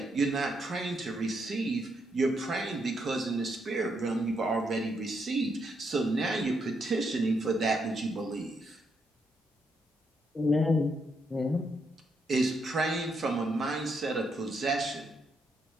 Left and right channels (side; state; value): both; normal; correlation 0.78